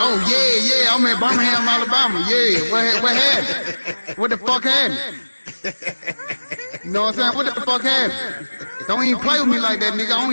yeah. I'm in Birmingham, Alabama. Yeah. What happened? What the fuck happened? You know what I'm saying? What the fuck happened? Don't even play with me like that, nigga. I don't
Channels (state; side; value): inverted; both; correlation -1.00